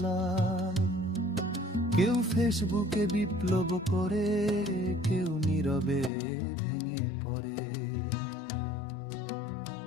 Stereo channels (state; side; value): drops out; right; at 6.1 s